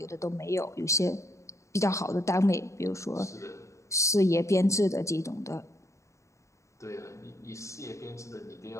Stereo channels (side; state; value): right; late; 0.14 ms